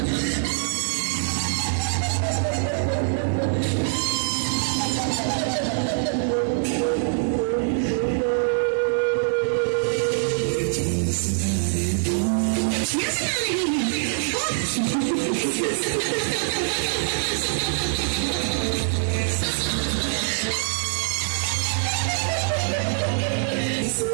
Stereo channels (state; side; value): silent; left; digital silence